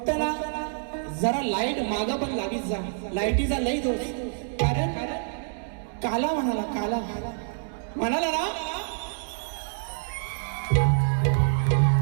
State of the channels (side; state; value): left; silent; digital silence